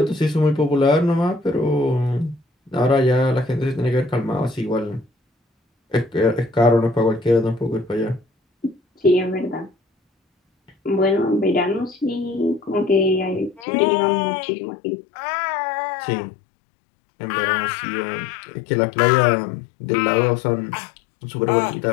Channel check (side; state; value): right; drops out; at 13.7 s